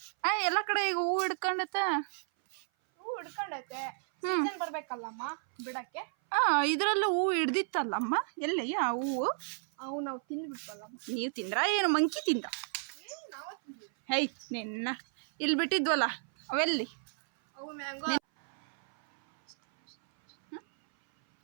ಎಲ್ಲ ಕಡೆ ಈಗ ಹೂ ಹಿಡ್ಕೊಂಡೈತೆ. ಹೂ ಹಿಡ್ಕೊಂಡೈತೆ. ಸೀಸನ್ ಬರ್ಬೇಕಲ್ಲಮ್ಮ ಬಿಡಕ್ಕೆ. ಇದ್ರಲ್ಲೂ ಹೂ ಹಿಡ್ದಿತ್ತಲ್ಲಮ್ಮ. ಎಲ್ಲಿ ಆ ಹೂವು? ಅವು ನಾವು ತಿಂದ್ಬಿಟ್ವಲ್ಲಮ್ಮ. ನೀವು ತಿಂದ್ರಾ? ಏನು ಮಂಕಿ ತಿಂದ? ನಾವು ತಿಂದ್ವಿ. ಹೈ ನಿನ್ನ ಇಲ್ಲಿ ಬಿಟ್ಟಿದ್ವಲ್ಲ, ಅವೆಲ್ಲಿ? ಅವು ಮ್ಯಾಂಗೋ.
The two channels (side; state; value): left; silent; 56 dB below the other